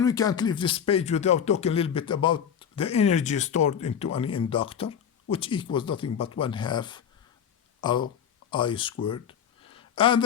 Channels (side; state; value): right; quieter; 8.2 dB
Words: we can't leave this page without talking a little bit about the energy stored into any inductor, which equals nothing but 1/2 I squared. And